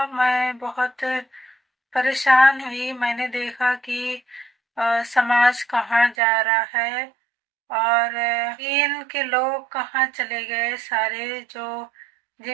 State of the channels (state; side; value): drops out; left; at 6.2 s